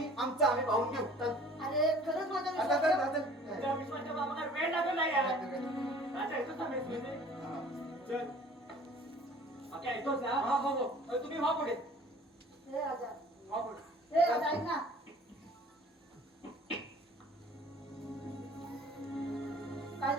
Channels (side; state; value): both; normal; correlation 0.49